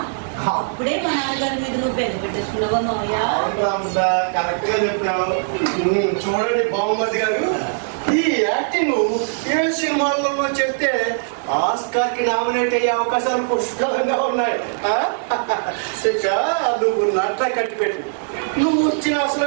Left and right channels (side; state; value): left; silent; digital silence